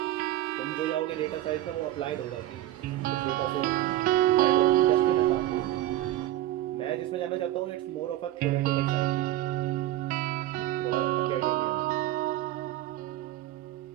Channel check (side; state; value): left; quieter; 14.5 dB